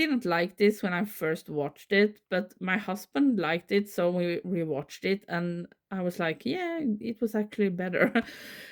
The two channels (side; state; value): both; identical; correlation 1.00